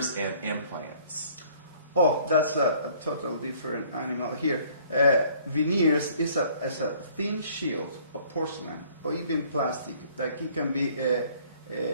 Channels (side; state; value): both; inverted; correlation -0.57